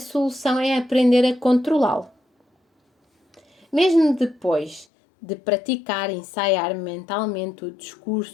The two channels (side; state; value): right; drops out; at 4.9 s